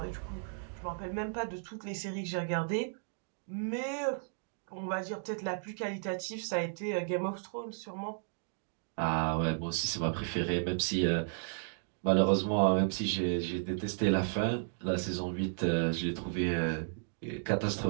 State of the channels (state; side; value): silent; left; digital silence